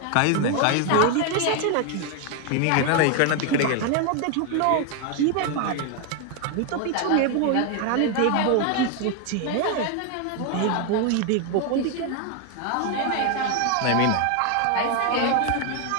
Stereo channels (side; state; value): both; different; correlation 0.01